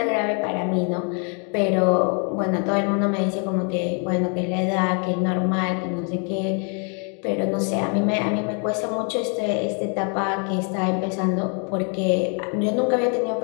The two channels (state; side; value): quieter; right; 38.4 dB